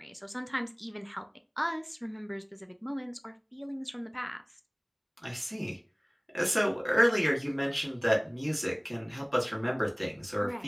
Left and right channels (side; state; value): both; identical; correlation 1.00